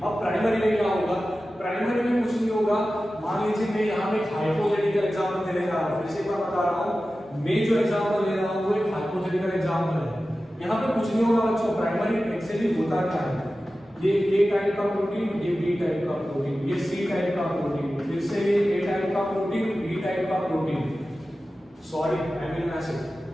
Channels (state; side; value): normal; both; correlation 0.94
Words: प्राइमरी में क्या होगा? प्राइमरी में कुछ नहीं होगा। मान लीजिए मैं यहाँ पे हाइपोथेटिकल एग्जांपल दे रहा हूँ, फिर से मैं बता रहा हूँ, मैं जो एग्जांपल ले रहा हूँ वो एक हाइपोथेटिकल एग्जांपल है। यहाँ पे कुछ नहीं होगा बच्चों। प्राइमरी एक्चुअली होता क्या है? ये ए टाइप का प्रोटीन, ये बी टाइप का प्रोटीन, ये सी टाइप का प्रोटीन, फिर से ये ए टाइप का प्रोटीन, बी टाइप का protein, sorry amino acid.